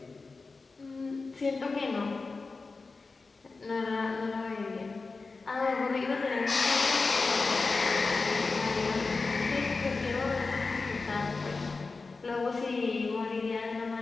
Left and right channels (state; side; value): quieter; right; 4.0 dB